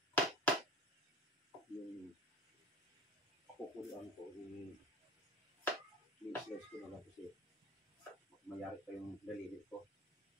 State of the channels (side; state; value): both; normal; correlation 0.39